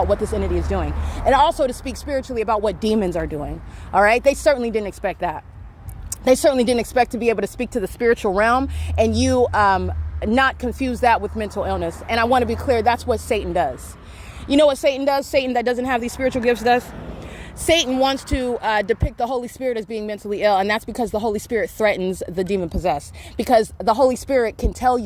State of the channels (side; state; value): both; identical; correlation 1.00